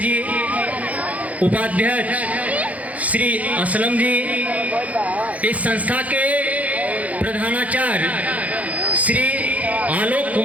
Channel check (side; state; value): left; late; 0.070 ms